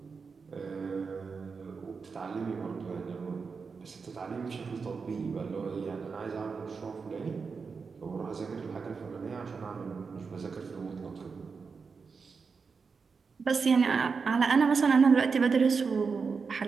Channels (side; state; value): left; quieter; 5.1 dB